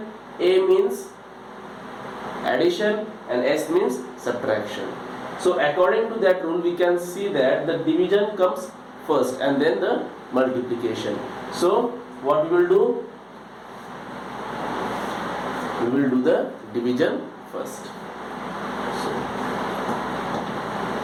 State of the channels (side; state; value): both; identical; correlation 1.00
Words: A means addition and S means subtraction. So according to that rule we can see that the division comes first and then the multiplication. So what we will do? We will do the division first.